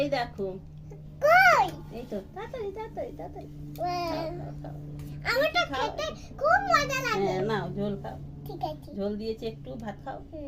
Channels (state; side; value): identical; both; correlation 1.00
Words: এই দেখো। কই? এই তো, তাড়াতাড়ি তাড়াতাড়ি তাড়াতাড়ি। আমার তো খেতে খুব মজা লাগে। হ্যাঁ নাও ঝোল খাও। ঠিক আছে। ঝোল দিয়েছি একটু, ভাত খাও।